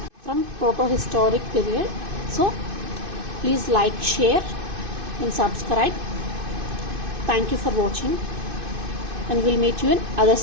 from proto-historic period. So please like, share and subscribe. Thank you for watching, and we'll meet you in other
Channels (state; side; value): late; left; 2.5 ms